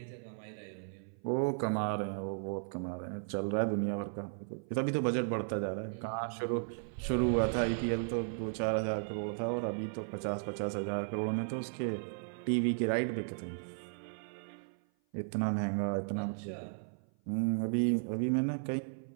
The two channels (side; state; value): left; silent; 54 dB below the other